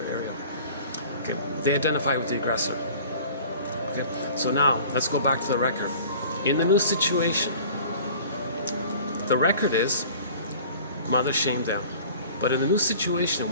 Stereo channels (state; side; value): inverted; both; correlation -0.46